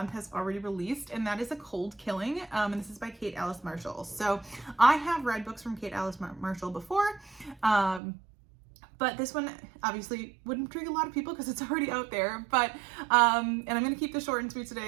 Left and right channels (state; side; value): drops out; left; at 8.0 s